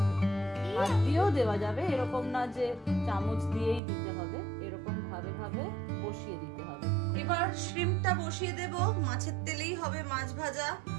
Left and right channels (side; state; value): left; drops out; at 3.8 s